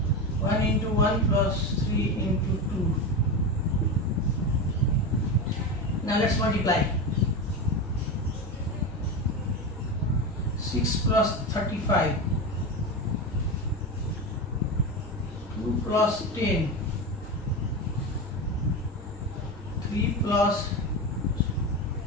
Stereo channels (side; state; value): both; normal; correlation 0.19